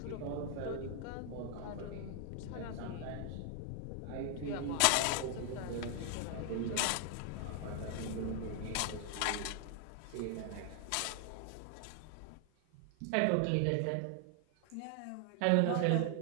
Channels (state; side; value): different; both; correlation 0.00